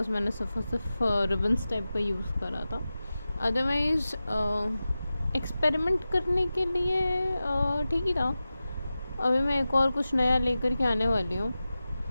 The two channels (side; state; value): both; inverted; correlation -0.94